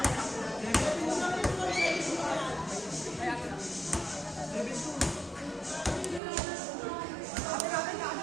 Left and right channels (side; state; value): left; drops out; at 6.2 s